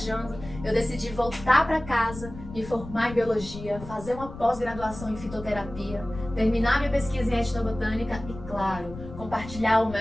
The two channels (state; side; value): noise; left; rumble, 13 dB below the sound